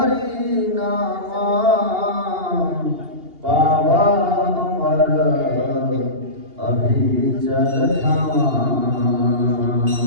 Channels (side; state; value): left; late; 2.8 ms